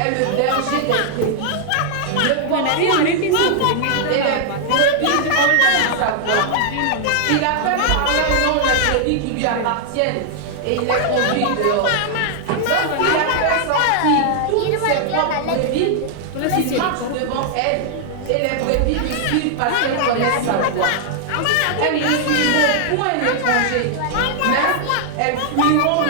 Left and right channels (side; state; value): both; different; correlation 0.00